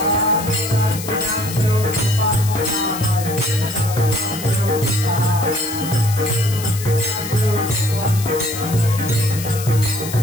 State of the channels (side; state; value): left; noise; hiss, 10 dB below the sound